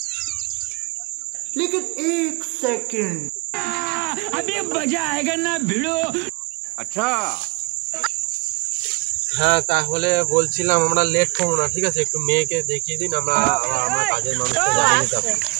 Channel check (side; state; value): left; quieter; 25.7 dB